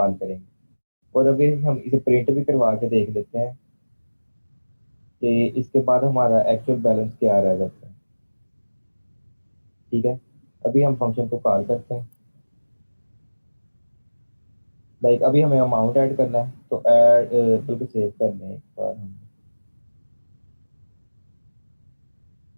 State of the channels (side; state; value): both; inverted; correlation -1.00